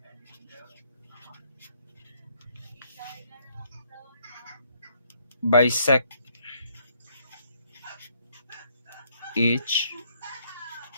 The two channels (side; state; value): both; inverted; correlation -0.69